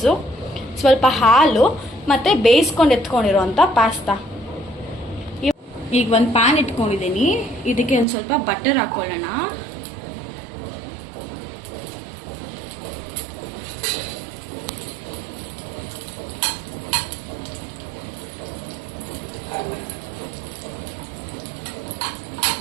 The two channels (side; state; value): left; drops out; at 8.1 s